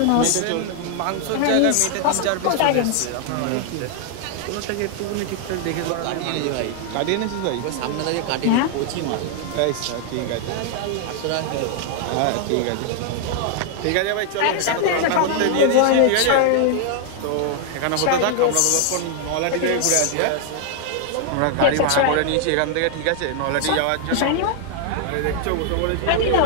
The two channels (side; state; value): both; different; correlation 0.00